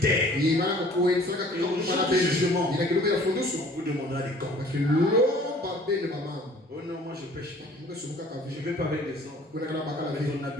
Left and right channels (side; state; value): both; normal; correlation 0.52